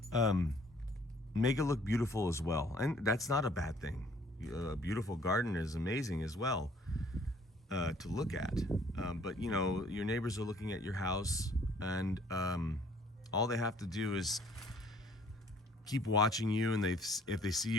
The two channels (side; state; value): both; normal; correlation 0.59